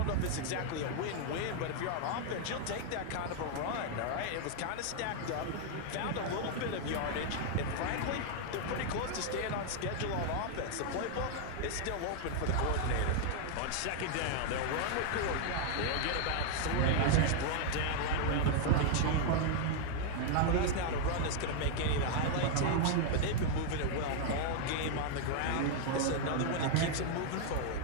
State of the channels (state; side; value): different; both; correlation 0.00